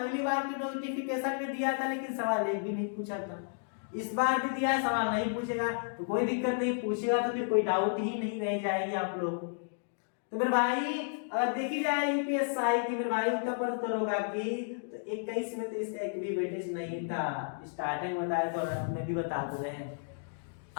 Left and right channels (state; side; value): silent; right; digital silence